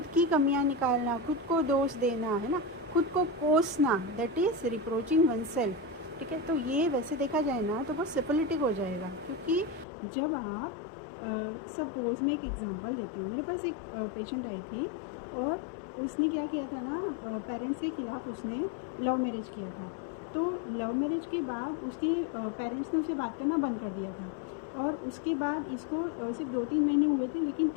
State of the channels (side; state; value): right; drops out; at 9.9 s